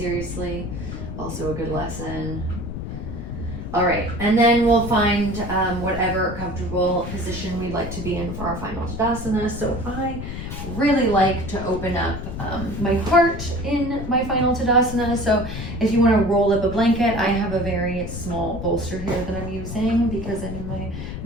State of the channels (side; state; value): left; noise; rumble, 7 dB below the sound